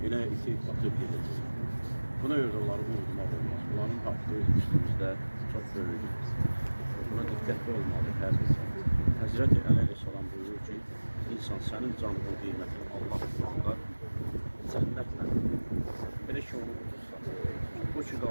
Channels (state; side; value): inverted; both; correlation -1.00